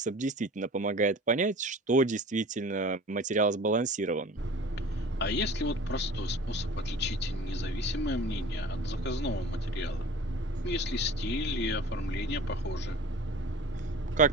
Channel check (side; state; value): both; normal; correlation 0.42